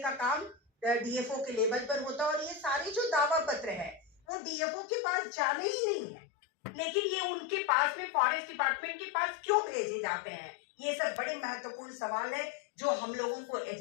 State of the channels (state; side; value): drops out; right; at 4.2 s